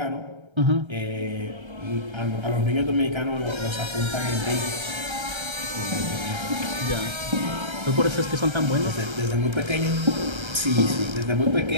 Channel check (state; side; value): late; left; 1.3 ms